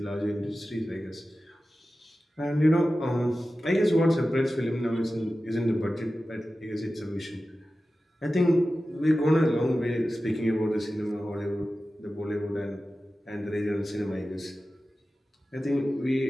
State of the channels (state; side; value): normal; both; correlation 0.94